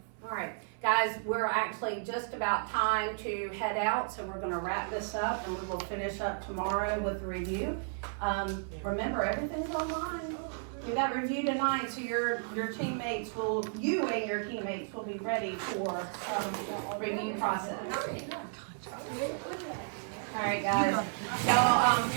All right, guys, we're actually just about time to head out, so we're going to wrap this up and we will finish up tomorrow with the review. Remember, everything's online. Do that review tonight so your teammates will, you and your teammates will be ready for review process. All right, guys, y'all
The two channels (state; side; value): silent; left; 56 dB below the other